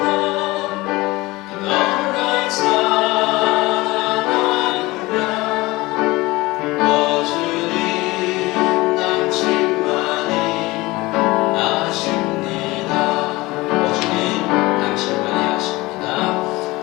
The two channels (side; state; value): right; quieter; 21.0 dB